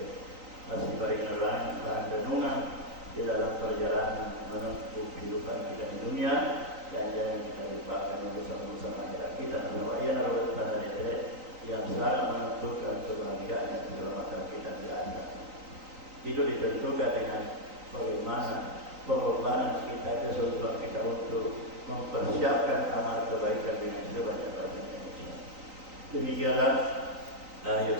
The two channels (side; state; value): left; late; 3.9 ms